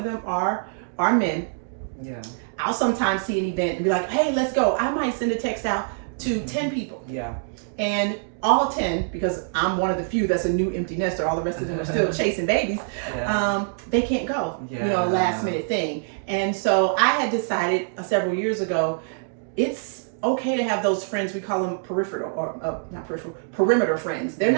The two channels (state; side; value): silent; left; digital silence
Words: them are men, I'll sometimes see an event and be like, hey, let's go. I might send a text out to 10 people. And all 10, because I'm one of the few that's a new empty nester, all the rest of them are still chasing babies, they can't go, you know, last minute thing. And so I had decided several years ago, it's okay to have those friends. We call them peripheral or not peripheral, perimeter friends. They're